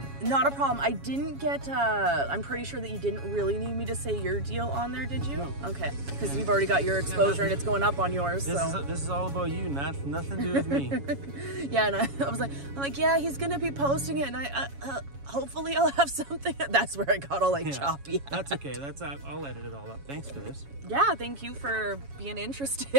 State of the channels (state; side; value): late; left; 7.2 ms